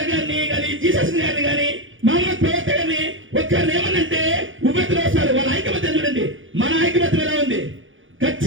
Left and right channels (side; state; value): left; late; 0.57 ms